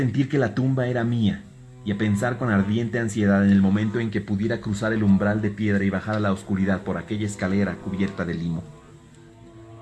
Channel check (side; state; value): both; identical; correlation 1.00